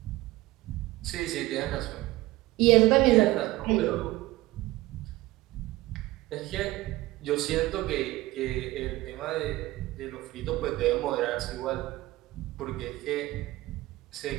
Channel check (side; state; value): left; quieter; 18.2 dB